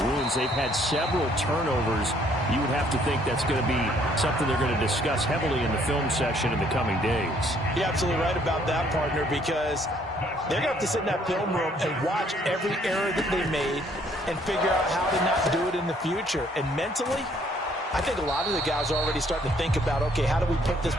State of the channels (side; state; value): both; normal; correlation 0.64